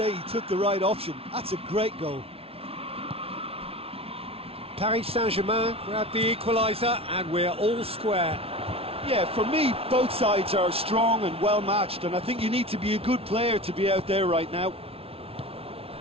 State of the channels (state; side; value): late; left; 0.28 ms